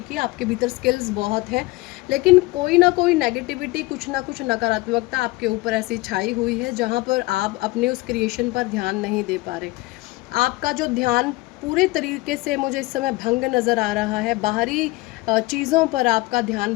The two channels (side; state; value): right; quieter; 21.4 dB